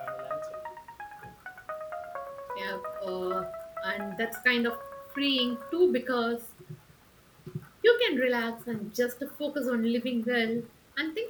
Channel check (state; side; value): identical; both; correlation 1.00